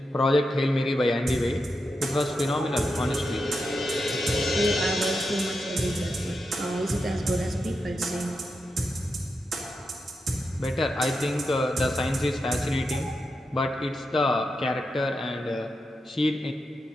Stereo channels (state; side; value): normal; both; correlation 0.87